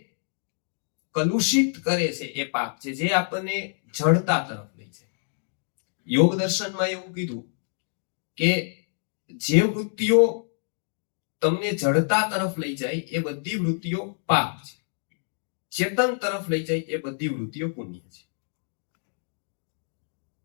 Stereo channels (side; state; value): right; silent; digital silence